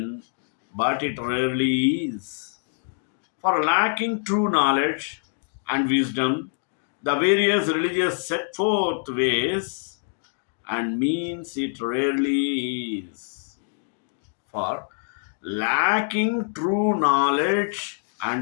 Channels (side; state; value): right; silent; digital silence